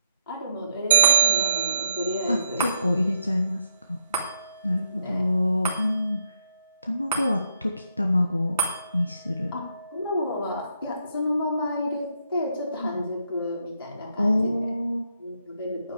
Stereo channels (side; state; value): both; inverted; correlation -0.75